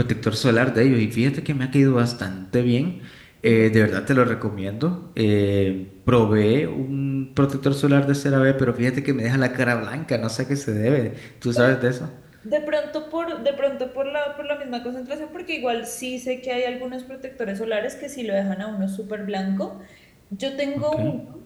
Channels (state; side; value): identical; both; correlation 1.00